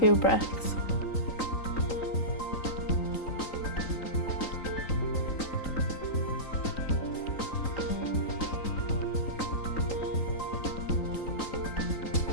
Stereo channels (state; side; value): late; right; 3.9 ms